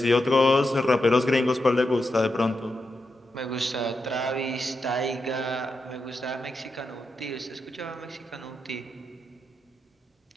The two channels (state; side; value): normal; both; correlation 0.87